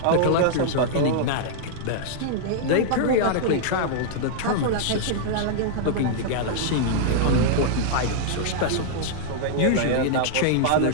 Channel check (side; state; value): both; different; correlation -0.01